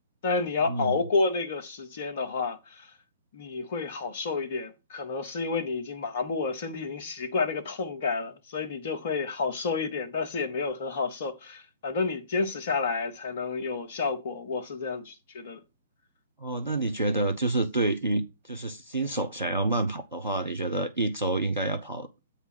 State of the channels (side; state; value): both; inverted; correlation -0.55